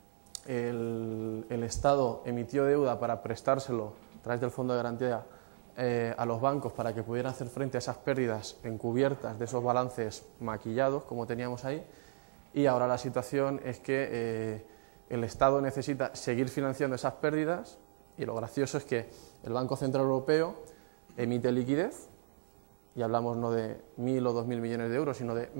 El Estado emitió deuda para prestárselo a través del Fondo de Garantía a los bancos para que pudieran hacer frente a esas pérdidas encubiertas de esos balances maquillados, como teníamos ahí, y ahora la situación es que el Estado necesita seguir financiando esas pérdidas y lo gracioso es que el Banco Central Europeo emite liquidez, y hablamos no de 1.000 o 2.000 millones de euros, sino de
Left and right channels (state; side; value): silent; left; digital silence